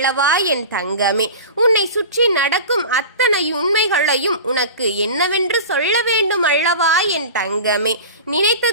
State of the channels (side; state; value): both; inverted; correlation -0.33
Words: என் தங்கமே. உன்னை சுற்றி நடக்கும் அத்தனை உண்மைகளையும் உனக்கு என்னவென்று சொல்ல வேண்டும் அல்லவா என் தங்கமே.